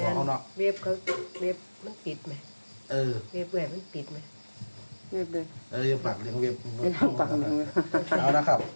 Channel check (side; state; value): both; inverted; correlation -1.00